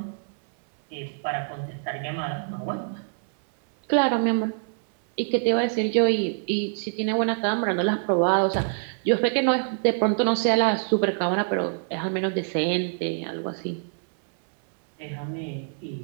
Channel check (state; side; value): silent; left; 61 dB below the other